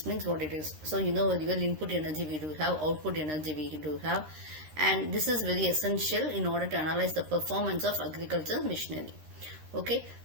means what it is. So real input energy we do have, output energy we do have, and this is very essential in order to analyze the performance of agricultural machinery. Okay,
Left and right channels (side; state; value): left; late; 13 ms